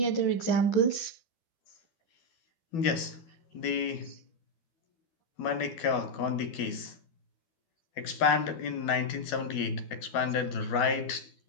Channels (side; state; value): right; late; 12 ms